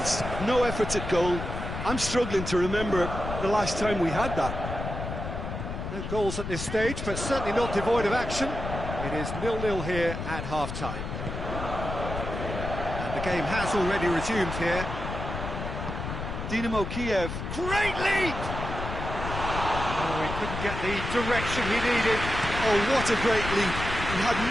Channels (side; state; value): left; noise; rumble, 6 dB below the sound